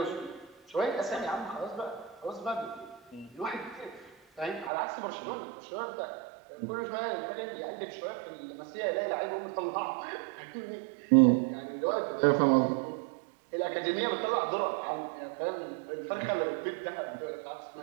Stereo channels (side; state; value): left; drops out; at 4.7 s